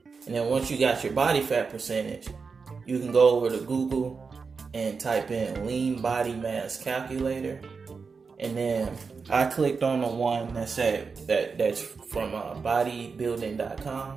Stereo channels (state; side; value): quieter; left; 5.0 dB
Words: And then once you got your body fat percentage, you can go over to Google and type in lean body mass calculator. And then I clicked on the one that said that's from bodybuilding.com.